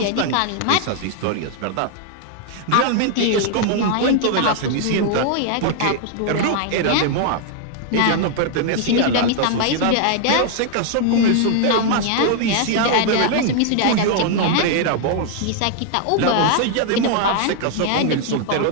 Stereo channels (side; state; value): both; different; correlation 0.00